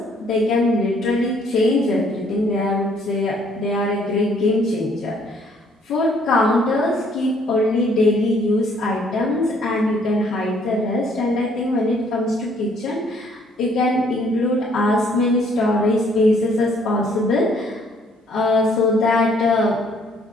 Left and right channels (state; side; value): normal; both; correlation 0.64